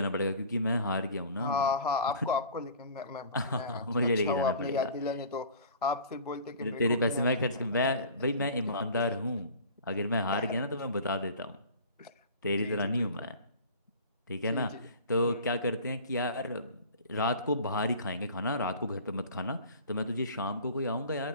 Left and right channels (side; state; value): both; inverted; correlation -0.44